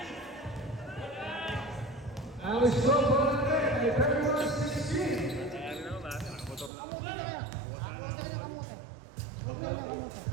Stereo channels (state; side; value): drops out; left; at 6.7 s